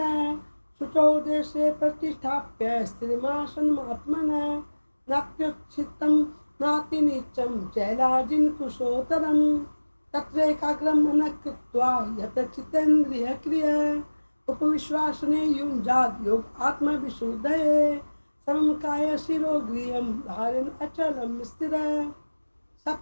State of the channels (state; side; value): inverted; both; correlation -1.00